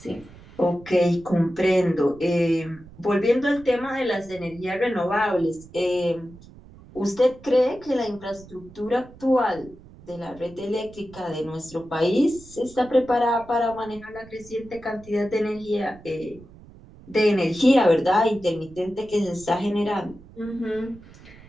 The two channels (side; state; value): right; noise; rumble, 21 dB below the sound